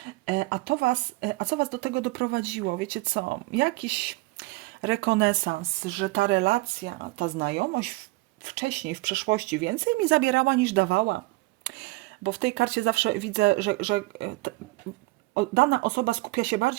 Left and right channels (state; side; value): quieter; left; 22.1 dB